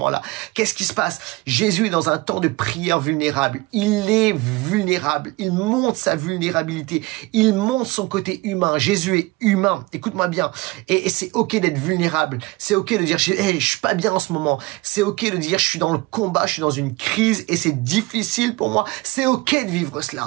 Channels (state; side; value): quieter; left; 22.2 dB